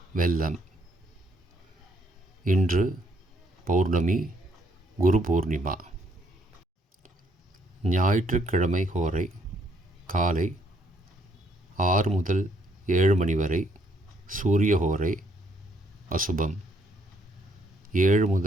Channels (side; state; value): both; normal; correlation 0.70